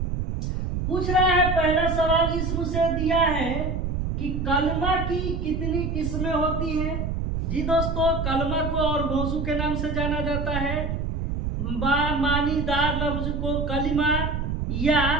पूछ रहा है पहला सवाल इस्म से दिया है कि कलमा की कितनी किस्में होती हैं। जी दोस्तों, कलमा को और मौजू के नाम से जाना जाता है। मानीदार लफ्ज को कलिमा या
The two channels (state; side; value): noise; right; rumble, 2 dB below the sound